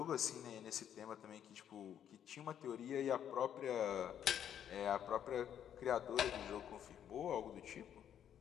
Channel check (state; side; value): quieter; right; 9.6 dB